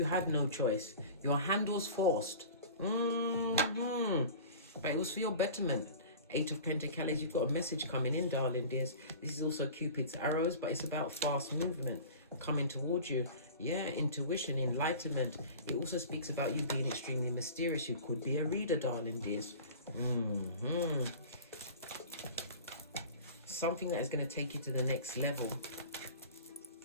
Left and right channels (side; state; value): both; inverted; correlation -0.39